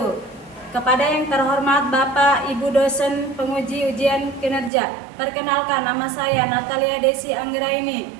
Kepada yang terhormat Bapak, Ibu dosen penguji ujian kinerja, perkenalkan nama saya Natalia Desi Anggraini.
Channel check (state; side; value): drops out; left; at 4.7 s